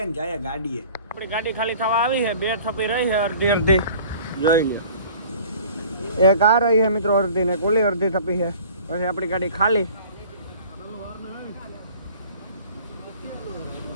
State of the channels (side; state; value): both; inverted; correlation -0.48